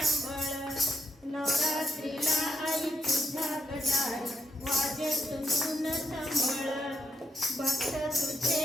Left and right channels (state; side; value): normal; both; correlation 0.77